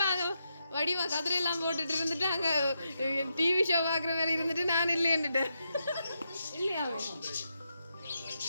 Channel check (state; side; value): inverted; both; correlation -0.83